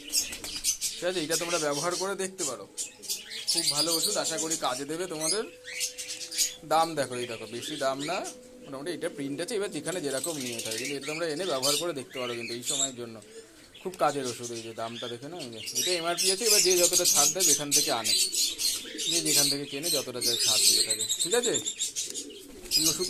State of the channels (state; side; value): identical; both; correlation 1.00